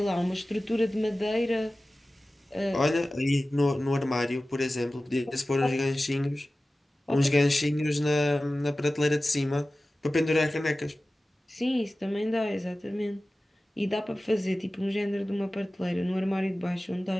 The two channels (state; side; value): normal; both; correlation 0.96